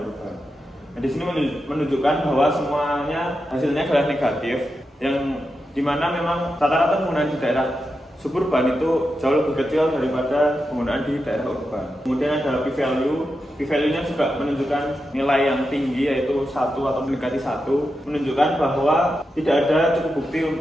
urban. Nah, di sini menunjukkan bahwa semuanya hasilnya adalah negatif, yang dimana memang rata-rata penggunaan di daerah suburban itu jauh lebih kecil daripada penggunaan di daerah urban. Kemudian ada p-value. P-value-nya juga menunjukkan nilai yang tinggi, yaitu 1 atau mendekati 1, menunjukkan bahwa tidak ada cukup bukti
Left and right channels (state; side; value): normal; both; correlation 0.88